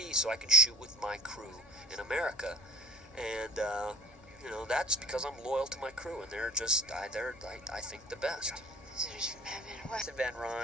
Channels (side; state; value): both; normal; correlation 0.41